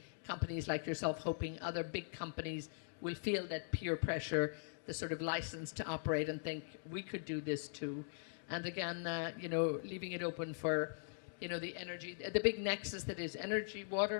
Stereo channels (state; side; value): silent; right; digital silence